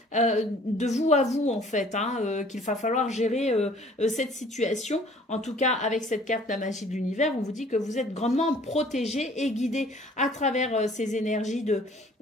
de vous à vous, en fait, hein, qu'il va falloir gérer cette situation. En tout cas, avec cette carte, la magie de l'univers, on vous dit que vous êtes grandement protégé et guidé à travers ces énergies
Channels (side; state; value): both; normal; correlation 0.54